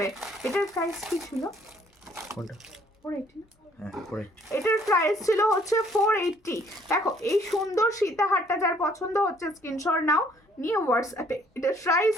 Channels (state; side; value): normal; both; correlation 0.62